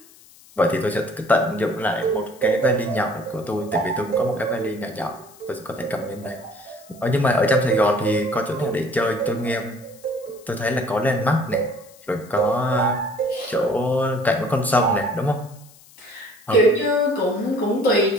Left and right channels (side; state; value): left; noise; hiss, 25 dB below the sound